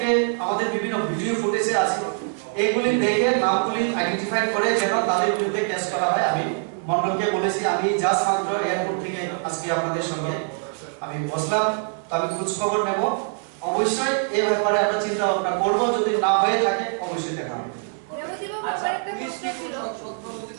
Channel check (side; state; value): left; silent; 62 dB below the other